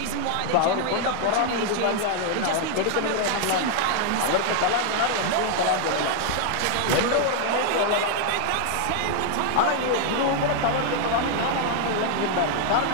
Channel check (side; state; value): both; different; correlation 0.00